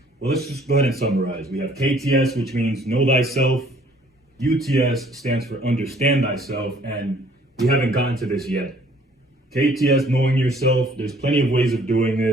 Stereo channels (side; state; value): both; normal; correlation 0.58